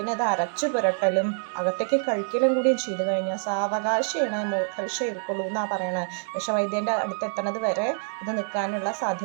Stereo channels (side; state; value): left; silent; digital silence